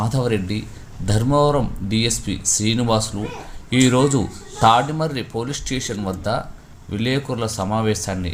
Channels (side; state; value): both; identical; correlation 1.00